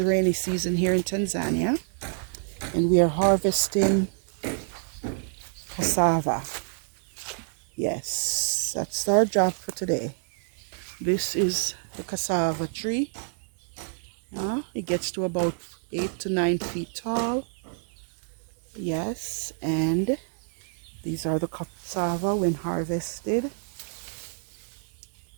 rainy season here in Tanzania. And we are harvesting cassava. Yes, that's our job for today. This is the cassava tree. It gets to about 8 to 9 feet tall. Yes, and these are the cassava when harvested.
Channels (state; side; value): silent; left; digital silence